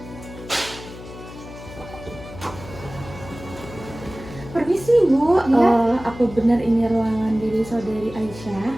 Permisi Bu, Iya. apa benar ini ruangan dari saudari Aisyah?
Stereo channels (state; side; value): noise; left; hum, 15 dB below the sound